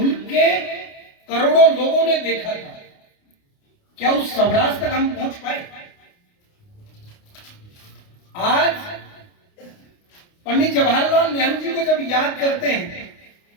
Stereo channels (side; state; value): right; late; 29 ms